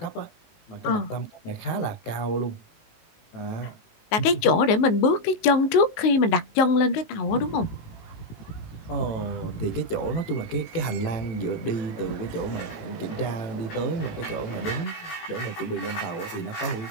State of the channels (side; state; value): right; late; 19 ms